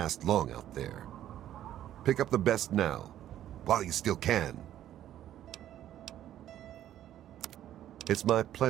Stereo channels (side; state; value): left; quieter; 11.9 dB